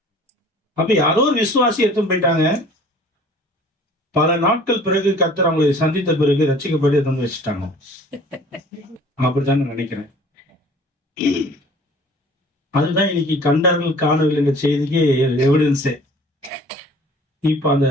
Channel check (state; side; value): normal; both; correlation 0.49